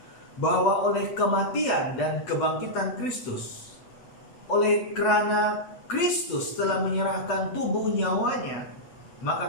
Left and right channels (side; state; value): right; late; 8.1 ms